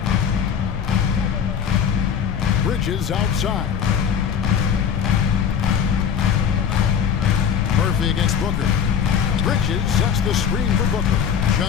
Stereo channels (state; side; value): quieter; right; 7.7 dB